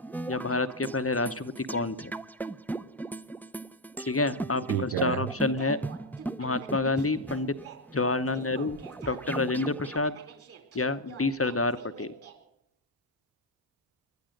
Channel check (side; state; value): both; normal; correlation 0.04